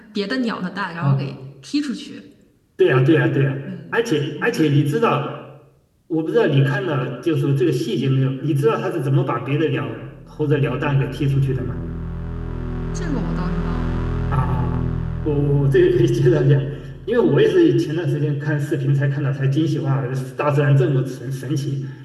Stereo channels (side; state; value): both; identical; correlation 1.00